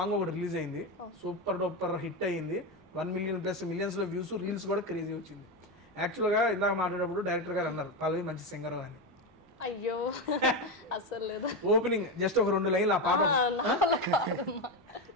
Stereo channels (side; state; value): both; normal; correlation 0.14